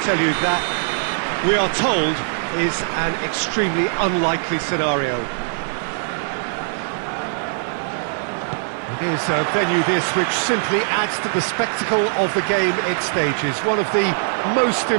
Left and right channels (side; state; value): left; silent; digital silence